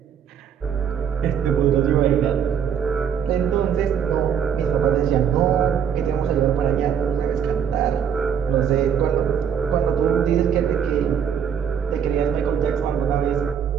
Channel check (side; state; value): left; quieter; 7.9 dB